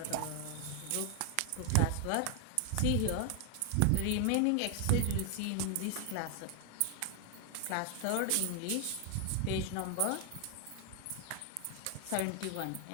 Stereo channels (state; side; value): different; both; correlation 0.00